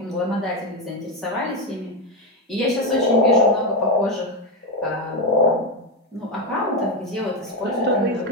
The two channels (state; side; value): normal; both; correlation 0.09